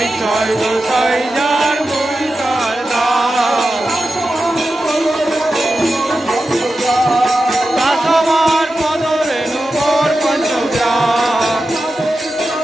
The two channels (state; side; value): normal; both; correlation 0.92